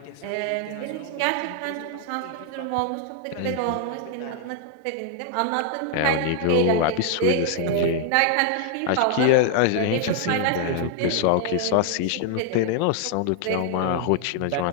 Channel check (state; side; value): different; both; correlation 0.00